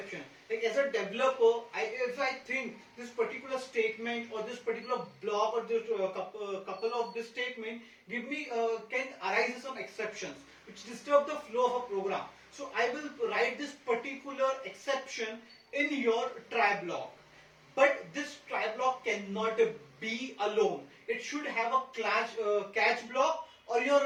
Like as a developer, if I think this particular statement or this particular block or this couple of this statement give me can arise some exceptions which disturb the flow of a program. So I will write this particular exception in your try block. But this try block cannot be alone. It should have a catch block or your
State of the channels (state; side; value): identical; both; correlation 1.00